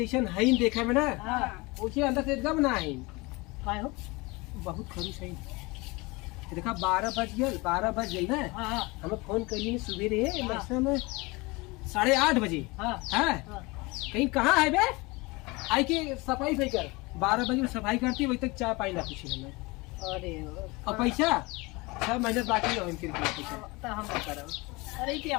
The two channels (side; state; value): right; quieter; 24.6 dB